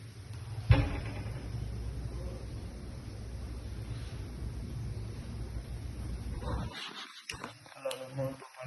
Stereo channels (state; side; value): identical; both; correlation 1.00